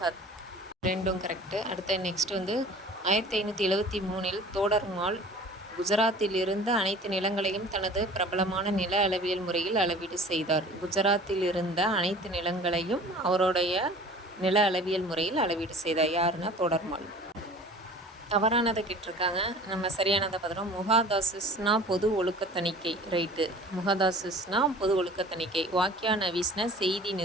ரெண்டும் கரெக்டு. அடுத்த நெக்ஸ்ட் 1573 தோடர்மால் குஜராத்தில் இருந்து அனைத்து நிலங்களையும் தனது பிரபலமான நில அளவியல் முறையில் அளவீடு செய்தார். குஜராத்தில் இருந்த அனைத்து நிலங்களையும் அவருடைய நில அளவியல் முறையில் அளவீடு செய்தார். யாருன்னா தோடர்மால். தவறானதை கேட்டிருக்காங்க. நம்ம சரியானதை பார்த்துறோம். முகாதாசிஸ்னா பொது ஒழுக்க தணிக்கை. ரைட்டு. முகாதாசிஸ்னா பொது ஒழுக்க தணிக்கை. வாக்கியா நவீஸ்னா செய்தி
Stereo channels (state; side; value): normal; both; correlation 0.45